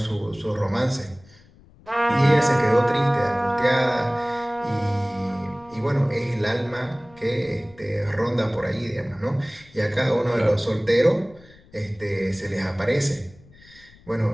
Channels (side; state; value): left; noise; rumble, 25 dB below the sound